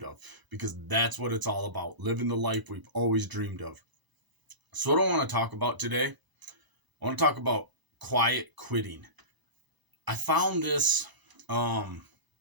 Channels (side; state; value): left; late; 1.0 ms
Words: of. Because that's what it's all about, living the life we've always dreamed of. So what I want to talk about today, I want to talk about quiet quitting. I found this term